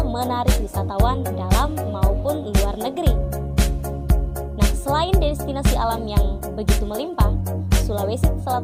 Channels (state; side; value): identical; both; correlation 1.00